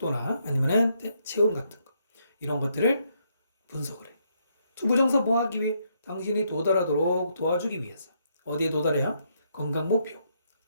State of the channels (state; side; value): inverted; both; correlation -0.74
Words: 아니면은 체온 같은 거 이런 것들을 분석을 해. 투부정사 뭐 하기 위해? 당신이 도달하도록 도와주기 위해서. 어디에 도달해야? 건강 목표